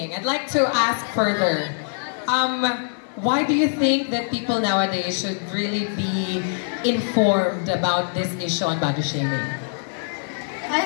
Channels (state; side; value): silent; right; 60 dB below the other